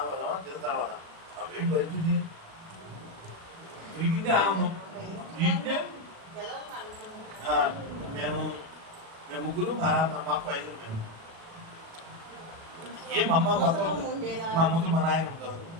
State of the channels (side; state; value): left; late; 36 ms